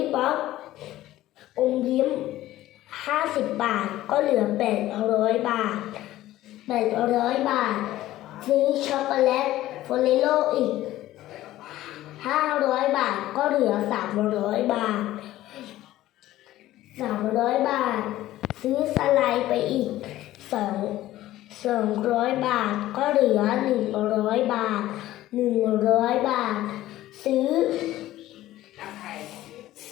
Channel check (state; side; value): quieter; right; 15.0 dB